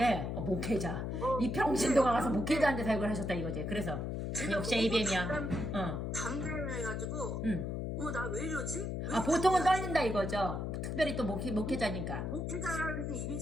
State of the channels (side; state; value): left; noise; hum, 3 dB below the sound